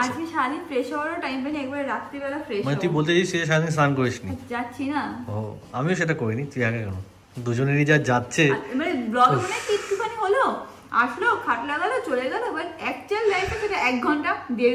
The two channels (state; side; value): identical; both; correlation 1.00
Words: আজকে সারাদিন ফ্রেশ হওয়ারও টাইম পাইনি, একবার রাত্রিবেলা ফ্রেশ মানে তুই বলতে চাইছিস সারাদিন স্নান করিসনি? যাচ্ছি না। ও আমিও সেটা করিনি, তুই আগে কেন? দুজনেরই যা যাচ্ছে। মানে ব্লগ মনে একটুখানি হলো, আসলো খাটলা গেল চলে গেল, বাট অ্যাকচুয়াল লাইফে সেটা 1 ঘন্টা